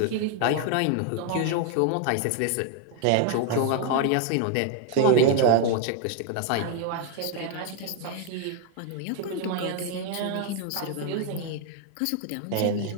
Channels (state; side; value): different; both; correlation 0.00